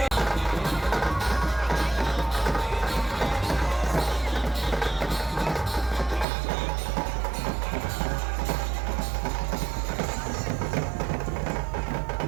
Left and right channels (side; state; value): left; drops out; at 6.2 s